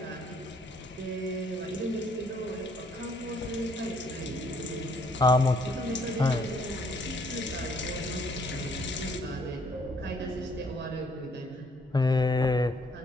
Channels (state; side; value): normal; both; correlation 0.66